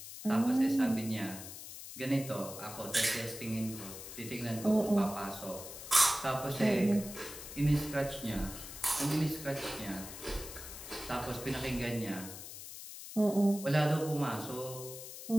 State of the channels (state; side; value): noise; left; hiss, 11 dB below the sound